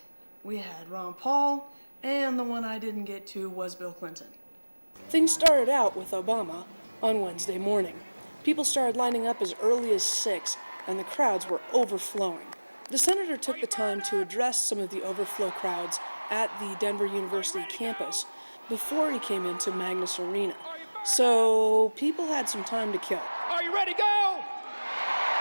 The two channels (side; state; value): both; inverted; correlation -1.00